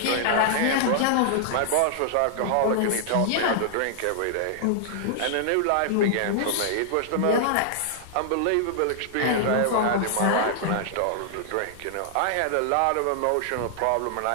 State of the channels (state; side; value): different; both; correlation -0.01